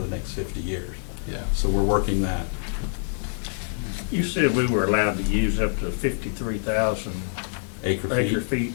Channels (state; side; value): silent; right; digital silence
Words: next 50 years. Yeah. So we're working that. You said we were allowed to use up to 53,000 acre feet.